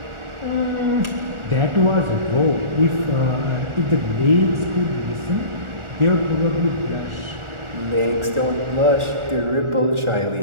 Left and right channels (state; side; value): late; left; 1.4 ms